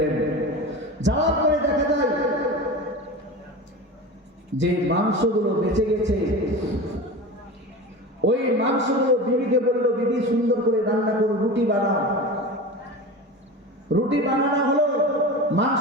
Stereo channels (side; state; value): both; normal; correlation 0.30